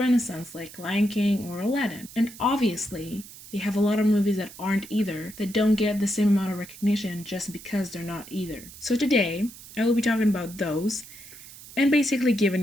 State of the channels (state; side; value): noise; right; hiss, 17 dB below the sound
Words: like Lion King or Aladdin. And obviously, they have a lot of movies that aren't either, that don't get the same amount of recognition just because they're not either. So today, I will be talking about those and basically